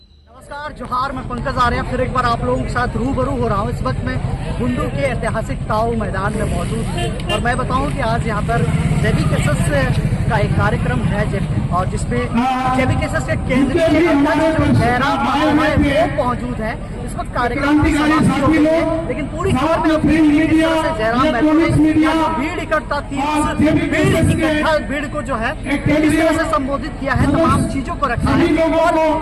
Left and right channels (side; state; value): both; identical; correlation 1.00